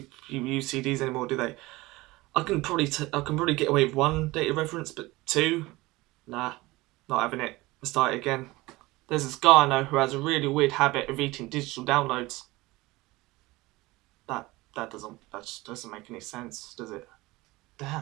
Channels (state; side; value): quieter; left; 20.6 dB